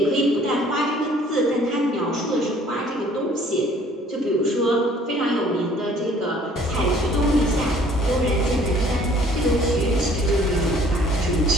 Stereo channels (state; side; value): normal; both; correlation 0.57